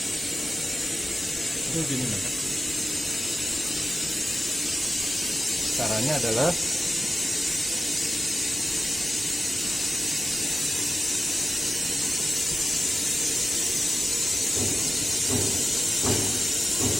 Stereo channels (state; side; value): normal; both; correlation 0.93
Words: Itu gini loh. Caranya adalah